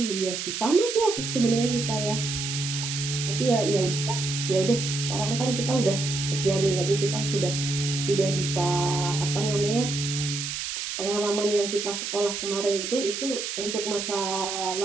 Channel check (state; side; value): noise; right; hiss, 4 dB below the sound